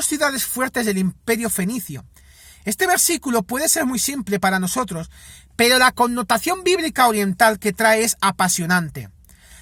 ciudades fuertes del imperio fenicio. Este versículo puede ser muy simple para nosotros, pero la connotación bíblica oriental que trae es apasionante.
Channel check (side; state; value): both; identical; correlation 1.00